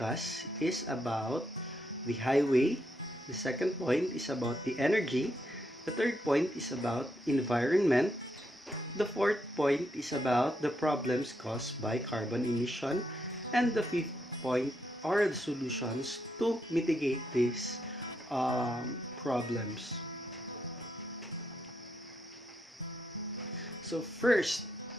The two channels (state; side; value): normal; both; correlation 0.80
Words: is about the highway. The second point is about the energy. The third point is about environment. The fourth point is about the problems caused by carbon emission. And the fifth point are the solutions to mitigate these problems. So first,